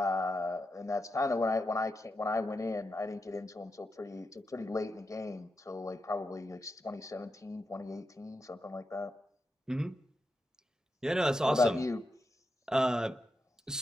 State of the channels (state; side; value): normal; both; correlation 0.87